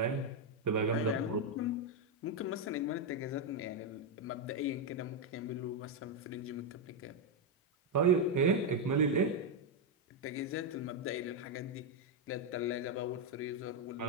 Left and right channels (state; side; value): normal; both; correlation 0.02